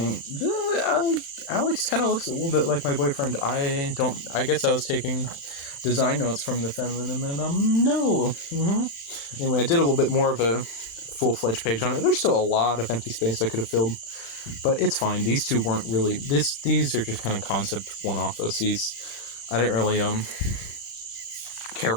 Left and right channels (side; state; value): right; late; 36 ms